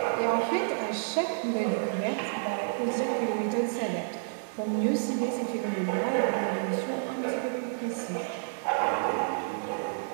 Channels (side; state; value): left; silent; 58 dB below the other